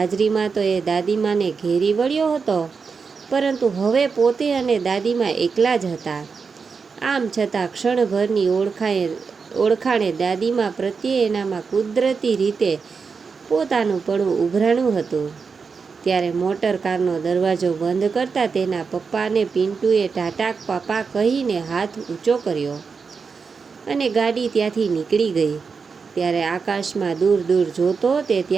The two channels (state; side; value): quieter; left; 5.3 dB